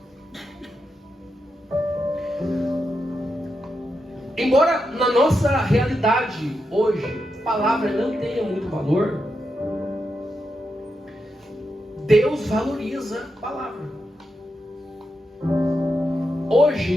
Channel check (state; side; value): normal; both; correlation 0.86